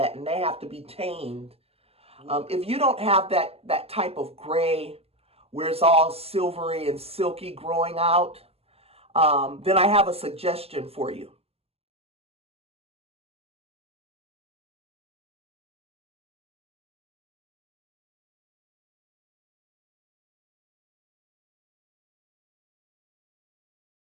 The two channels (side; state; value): left; late; 0.29 ms